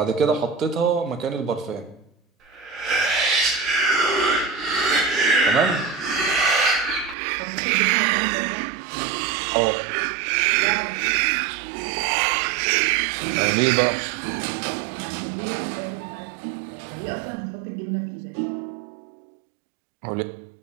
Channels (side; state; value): left; drops out; at 7.2 s